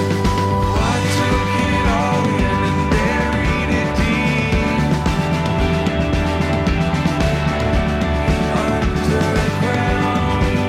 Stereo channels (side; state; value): both; identical; correlation 1.00